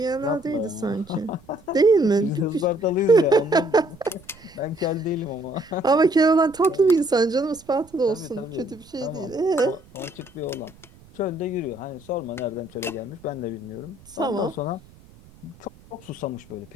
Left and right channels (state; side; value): noise; right; rumble, 25 dB below the sound